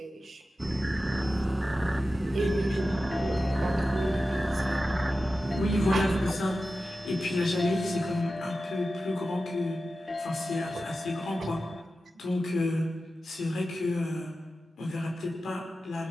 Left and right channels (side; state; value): both; normal; correlation 0.93